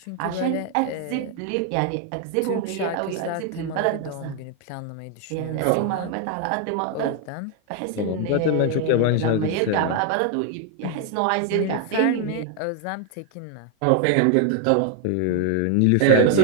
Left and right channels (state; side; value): different; both; correlation 0.00